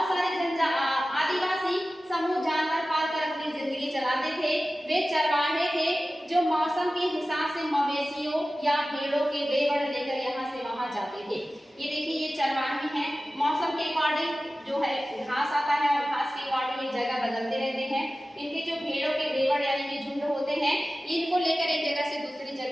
सारे आदिवासी समूह जानवर पालकर अपनी जिंदगी चलाते थे। वे चरवाहे थे जो मौसम के हिसाब से मवेशियों या भेड़ों के लेवड़ लेकर यहाँ से वहां जाते थे। ये देखिए ये चरवाहे हैं, मौसम के अकॉर्डिंग जो है घास आता है और घास के अकॉर्डिंग ये जगह बदलते रहते हैं। इनके जो भेड़ों के लेवड़ यानी कि झुंड होते हैं, इनको लेकर एक जगह से दूसरी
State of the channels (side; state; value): both; normal; correlation 0.95